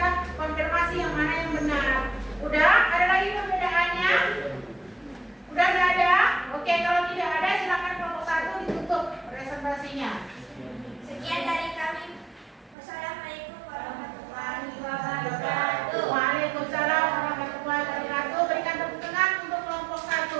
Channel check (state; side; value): drops out; left; at 12.8 s